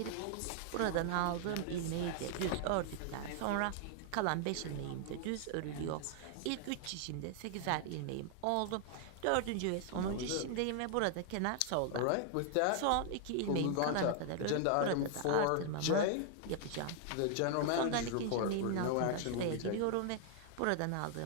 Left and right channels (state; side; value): different; both; correlation 0.00